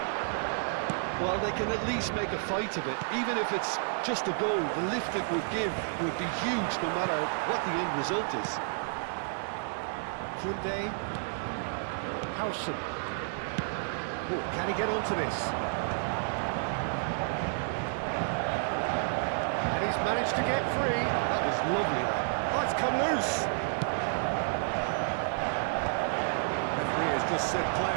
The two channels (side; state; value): left; silent; digital silence